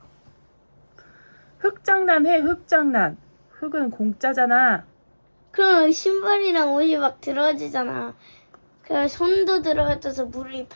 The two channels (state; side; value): inverted; both; correlation -1.00